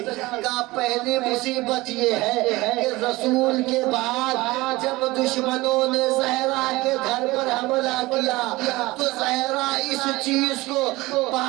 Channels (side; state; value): left; quieter; 20.4 dB